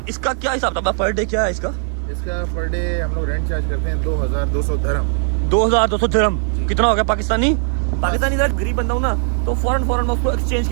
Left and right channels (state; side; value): silent; left; 64 dB below the other